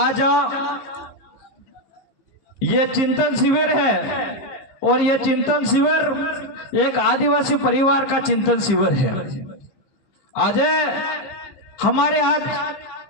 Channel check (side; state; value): right; late; 15 ms